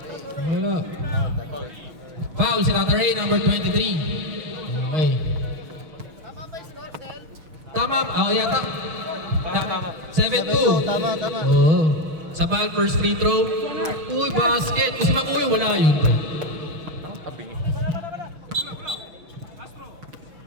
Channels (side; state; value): left; late; 6.2 ms